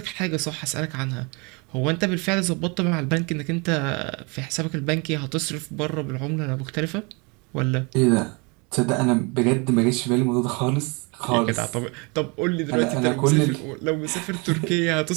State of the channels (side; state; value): left; quieter; 30.2 dB